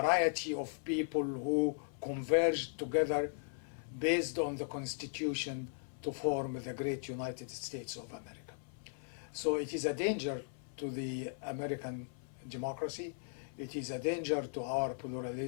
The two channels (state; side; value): silent; right; 53 dB below the other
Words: of people who converge together based on the Constitution to form the great United States of America. So it is a danger to the American democracy. It is a danger to our